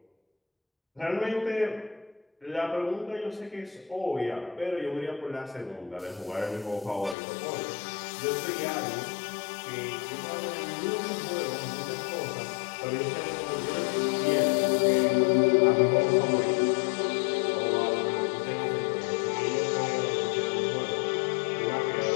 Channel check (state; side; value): drops out; right; at 7.2 s